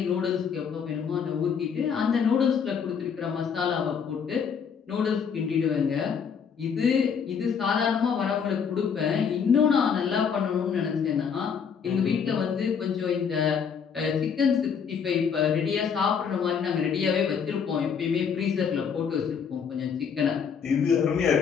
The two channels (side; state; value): right; quieter; 6.8 dB